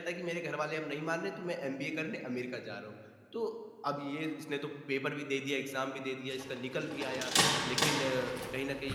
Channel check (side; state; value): both; identical; correlation 1.00